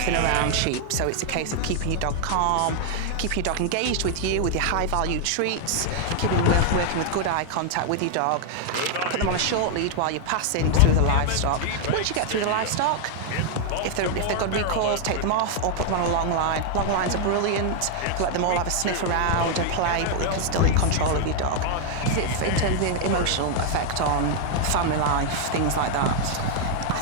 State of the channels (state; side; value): different; both; correlation 0.00